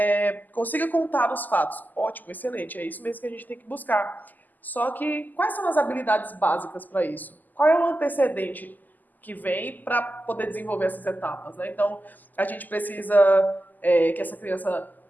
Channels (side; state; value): right; late; 0.084 ms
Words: consiga contar os fatos. Ótimo, excelente, é isso mesmo que a gente tem que buscar. Só que, quais são as habilidades básicas para isso? Qual é o antecedente que vem para poder desenvolver essas etapas? Né? Então, a gente precisa que essa criança